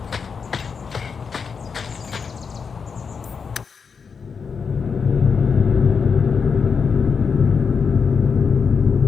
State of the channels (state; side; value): quieter; right; 5.8 dB